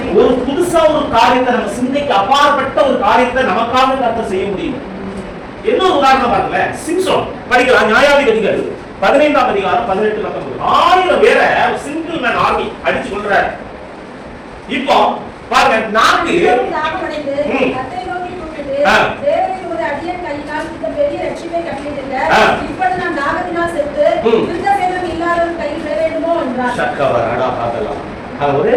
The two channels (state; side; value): identical; both; correlation 1.00